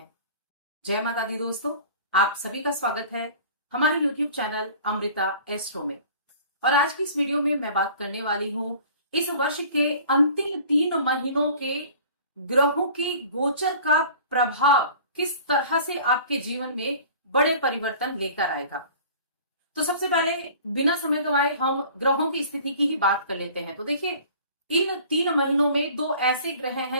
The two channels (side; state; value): both; inverted; correlation -0.46